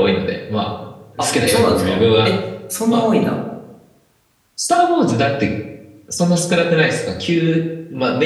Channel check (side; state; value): both; identical; correlation 1.00